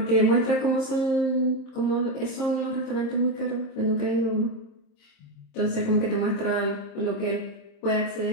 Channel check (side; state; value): right; late; 26 ms